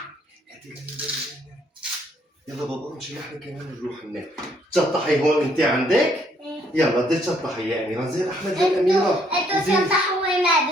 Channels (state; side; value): normal; both; correlation 0.68